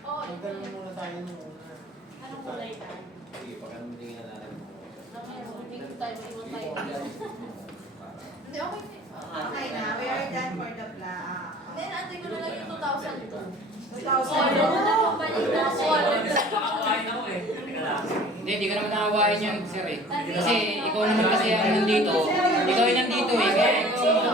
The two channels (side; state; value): both; normal; correlation 0.47